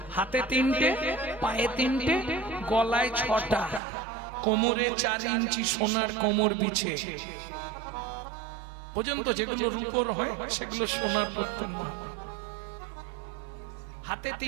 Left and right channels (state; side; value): drops out; left; at 3.8 s